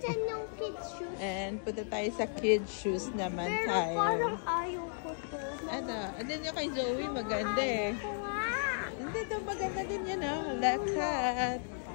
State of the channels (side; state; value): right; silent; digital silence